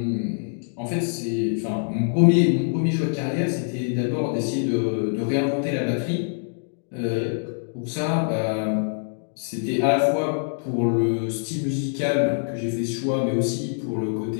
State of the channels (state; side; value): silent; right; digital silence